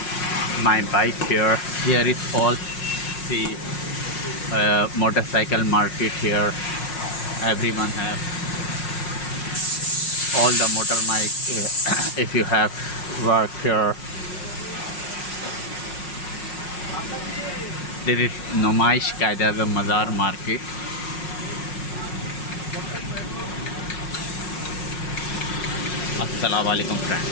my bike here. Here is all the motorcycle market here. Everyone have all the motor bike. If you have work here, there is Numaish Qaeda the Mazar market. Assalamu alaikum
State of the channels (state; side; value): late; right; 5.5 ms